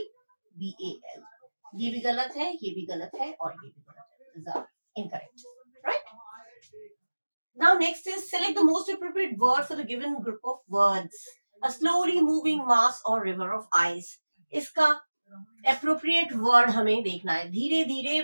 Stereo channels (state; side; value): inverted; both; correlation -1.00